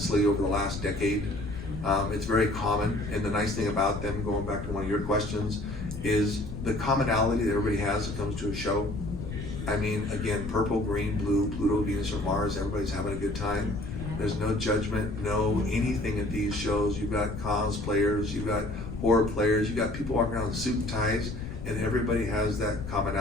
over the last decade. It's very common, and the nice thing about them, going back to one of your questions, is the commonality that everybody has that comes to a show. I mean, again, purple, green, blue, Pluto, Venus, or Mars, everybody's having a good time. There's no judgment, no anything at these shows. You've got cosplayers, you've got horror players, you've got people walking around in suit and ties, and everybody has that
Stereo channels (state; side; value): noise; left; rumble, 8 dB below the sound